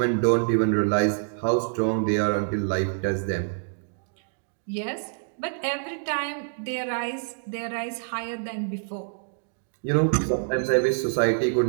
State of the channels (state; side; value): silent; left; digital silence